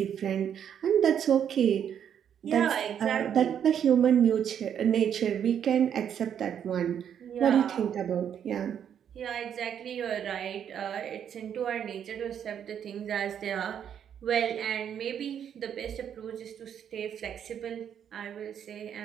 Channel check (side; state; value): left; quieter; 8.8 dB